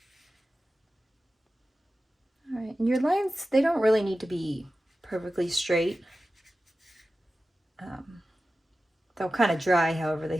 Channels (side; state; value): both; normal; correlation 0.94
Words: All right, and your lines, they don't really need to be perfectly straight. They'll kind of dry however they